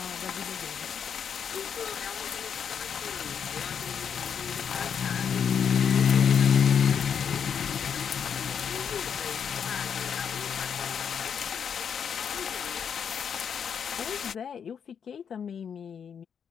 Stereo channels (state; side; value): quieter; right; 7.4 dB